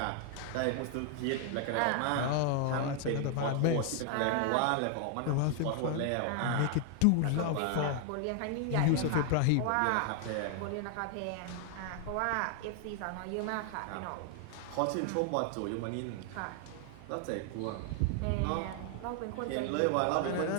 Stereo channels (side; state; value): both; different; correlation 0.00